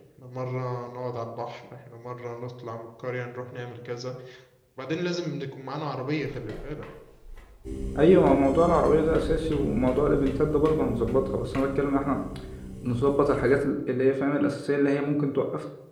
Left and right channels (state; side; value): identical; both; correlation 1.00